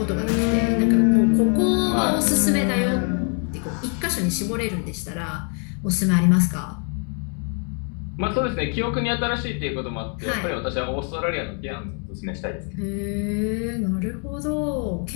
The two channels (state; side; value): quieter; right; 39.8 dB